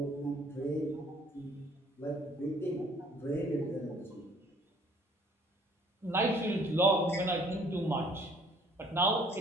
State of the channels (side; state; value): both; normal; correlation 0.57